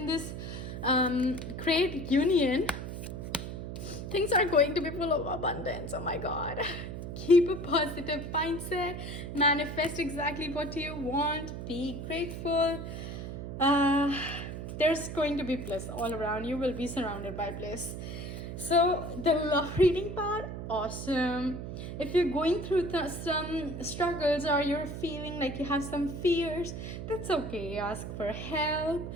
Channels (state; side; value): noise; right; hum, 7 dB below the sound